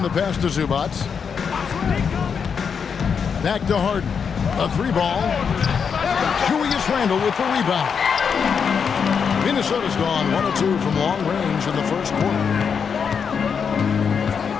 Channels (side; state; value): right; quieter; 6.5 dB